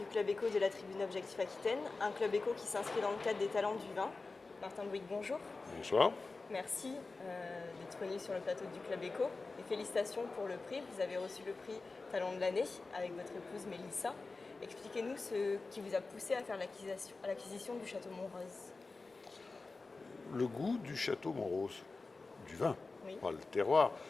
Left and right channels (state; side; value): quieter; right; 3.8 dB